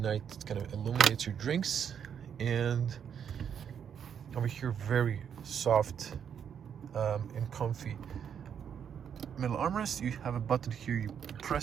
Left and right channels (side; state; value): left; quieter; 8.0 dB